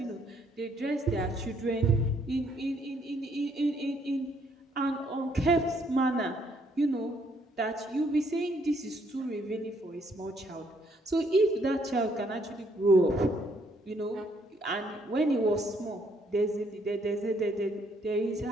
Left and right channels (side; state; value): both; normal; correlation 0.69